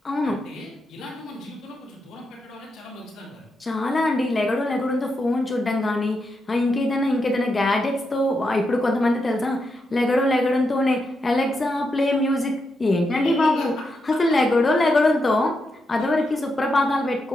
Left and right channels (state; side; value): normal; both; correlation 0.84